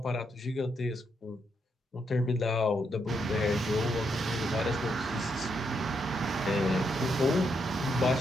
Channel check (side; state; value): both; normal; correlation 0.79